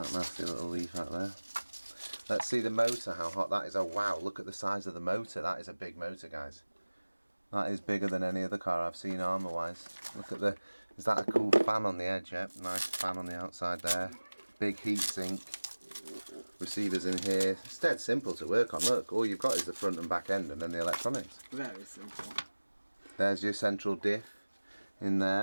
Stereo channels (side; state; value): both; inverted; correlation -1.00